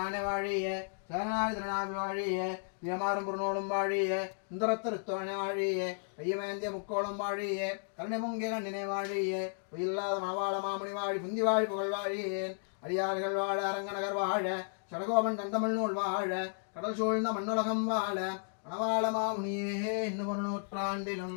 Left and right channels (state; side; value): silent; right; digital silence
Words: வாழிய சேனாதி திருநாவி வாழிய தியமாறும் புறநோடும் வாழிய சுந்தரத்திருத்தோழனை வாழிய ஐயமேந்திய முக்கோளம் வாழிய கருணை பொங்கிய கண்ணினை வாழிய உயில்லாத மணவாள மாமுனி வாழி புந்தி வாழி புகழ் வாழியேன் அடியார்கள் வாழ அரங்கநகர் வாழ சடகோபன் தந்தமிழ் நூல் வாழ கடல் சூழ்ந்த மண்ணுலகம் வாழ மணவாள மாமுனியே இன்னும் 1